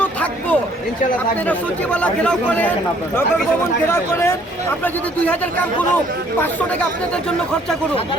থাকবো। ইনশাআল্লাহ থাকবো। আপনারা সচিবালয় ঘেরাও করেন, নগর ভবন ঘেরাও করেন। আমরা যদি 2000 কাম করুন, 500 টাকা আপনাদের জন্য খরচা করুন।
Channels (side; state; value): both; normal; correlation 0.61